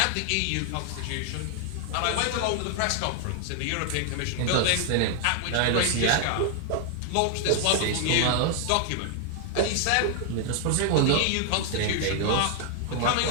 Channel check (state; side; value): different; both; correlation 0.00